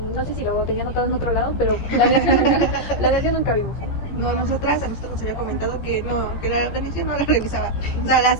no sé si lo tenía anotado en otro lado, pero planeación nunca vimos. No, a nosotros nos había comentado que no, que la organización no la revisaba. O sea, la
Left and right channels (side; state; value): right; late; 14 ms